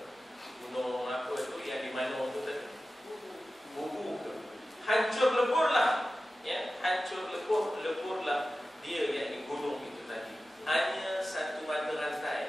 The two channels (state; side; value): normal; both; correlation 0.94